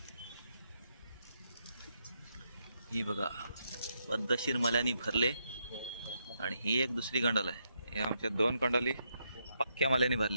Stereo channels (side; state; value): both; inverted; correlation -0.80